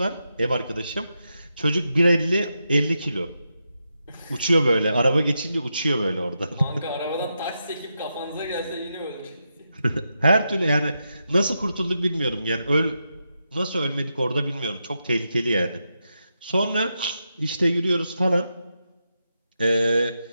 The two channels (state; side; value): inverted; both; correlation -0.86